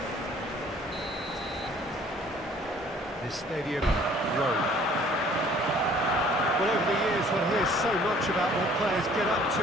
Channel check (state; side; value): normal; both; correlation 0.55